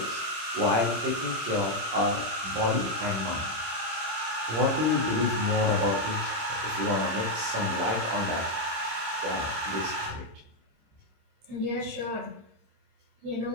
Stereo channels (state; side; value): late; left; 26 ms